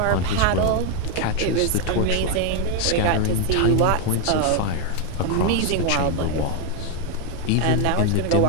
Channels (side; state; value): both; different; correlation 0.01